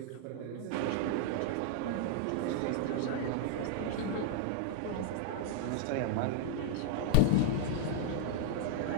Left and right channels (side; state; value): both; different; correlation -0.01